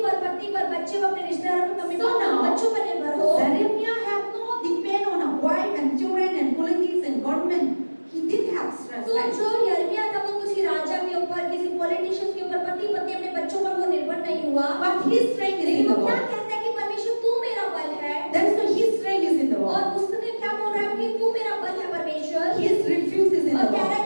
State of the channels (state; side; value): inverted; both; correlation -1.00